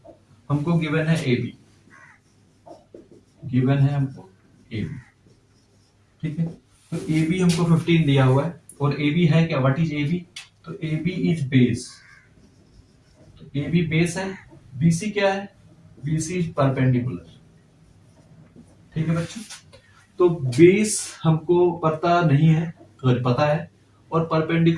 हमको गिवन है ए बी, गिवन है हमको ए बी। ठीक है, तो ए बी हमको 15 दिया हुआ है, और ए बी है क्या, व्हाट इज ए बी, तो ए बी इज बेस, तो ए बी बेस है। बीसी क्या है, बीसी इज परपेंडिकुलर। ठीक है बच्चों, तो बेस हमको पता नहीं है, अगर पता है, और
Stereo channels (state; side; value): identical; both; correlation 1.00